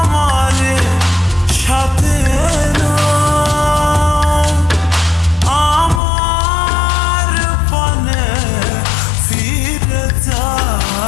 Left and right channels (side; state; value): right; drops out; at 6.0 s